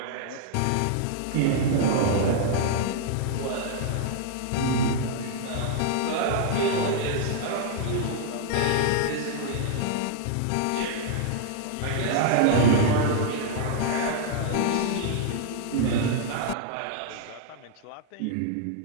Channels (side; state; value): both; different; correlation -0.01